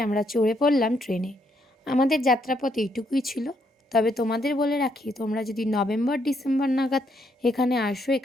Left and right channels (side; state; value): both; normal; correlation 0.74